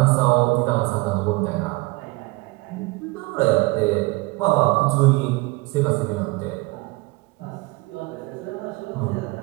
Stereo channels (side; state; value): left; quieter; 23.8 dB